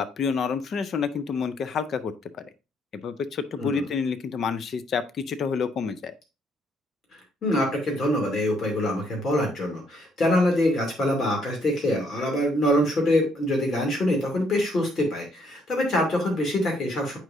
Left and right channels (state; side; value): normal; both; correlation 0.69